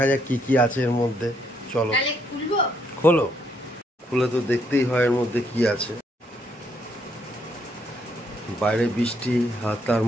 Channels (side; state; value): both; normal; correlation 0.72